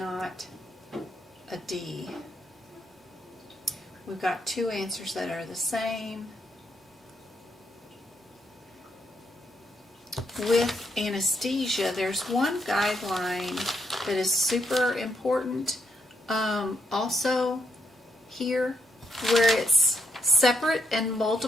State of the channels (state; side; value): normal; both; correlation 0.77